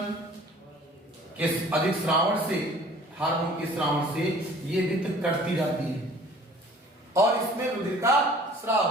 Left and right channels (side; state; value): both; normal; correlation 0.50